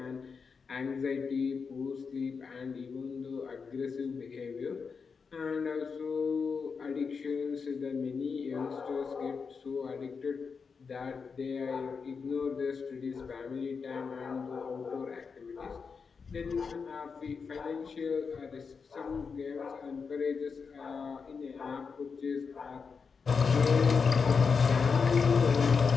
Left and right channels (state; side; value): quieter; right; 5.4 dB